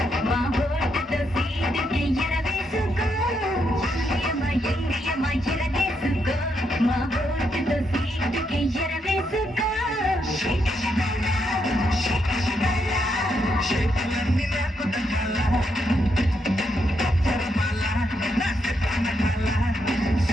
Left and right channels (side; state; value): both; normal; correlation 0.79